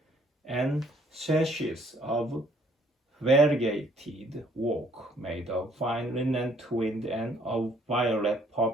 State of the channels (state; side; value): normal; both; correlation 0.63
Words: and sashes of variegated work made of fine linen twinned and of violet,